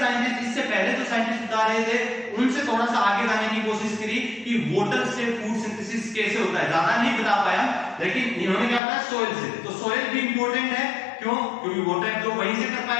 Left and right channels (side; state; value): right; drops out; at 8.8 s